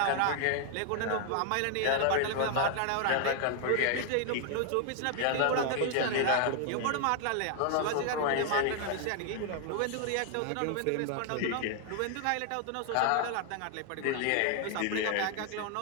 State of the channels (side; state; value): both; different; correlation 0.00